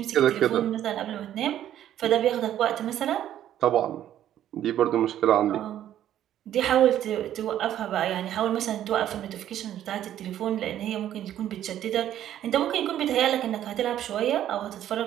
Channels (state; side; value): quieter; left; 11.5 dB